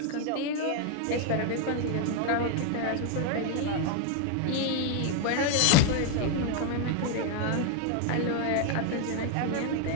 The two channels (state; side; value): different; both; correlation 0.01